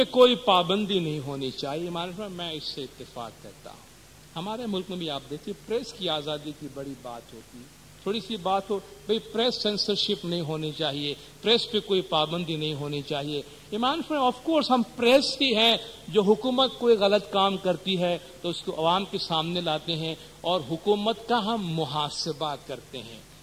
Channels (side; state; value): both; identical; correlation 1.00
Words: کوئی پابندی نہیں ہونی چاہیے. میں اس سے اتفاق کرتا ہوں. ہمارے ملک میں بھی آپ دیکھیے پریس کی آزادی کی بڑی بات ہوتی ہے. تھوڑی سی بات ہو بھئی پریس سینسرشپ نہیں ہونی چاہیے، پریس پہ کوئی پابندی نہیں ہونی چاہیے. امام فرمایا آف کورس ہم پریس ہی ہیں جو حکومت کوئی غلط کام کرتی ہے تو اس کو عوام کے سامنے لاتے ہیں اور حکومت کا ہم محاسبہ کرتے ہیں.